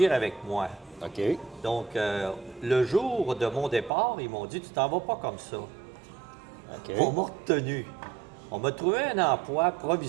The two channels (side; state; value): left; drops out; at 3.9 s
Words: avec moi. OK. Donc, le jour de mon départ, ils m'ont dit, tu t'en vas pas comme ça. OK. On m'a retenu. On m'a trouvé un emploi